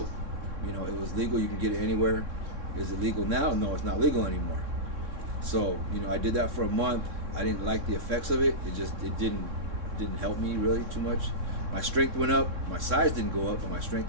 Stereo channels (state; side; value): late; left; 3.6 ms